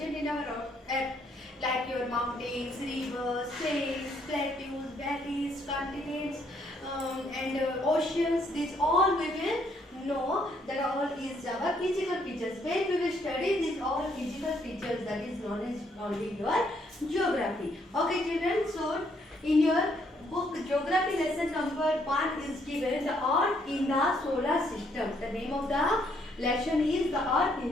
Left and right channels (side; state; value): both; normal; correlation 0.70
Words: in our Earth, like your mountains, rivers, plains, plateaus, valleys, continents, and oceans. These all we will know that all is our physical features. When we will study these all physical features, that is known as only your geography. Okay children, so in your book geography lesson number 1 is given the Earth in the solar system. The name of the lesson is the Earth